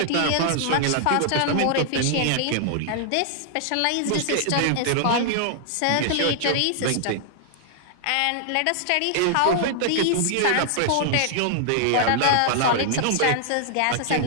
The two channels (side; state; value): both; different; correlation -0.01